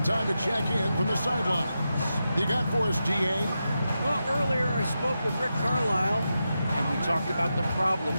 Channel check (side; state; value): both; inverted; correlation -0.89